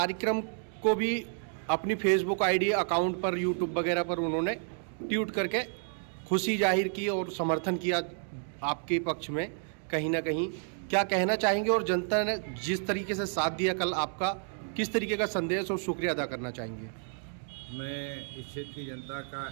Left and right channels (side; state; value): left; silent; 57 dB below the other